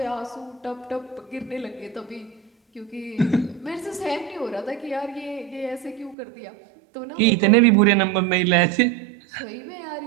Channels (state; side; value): drops out; left; at 6.2 s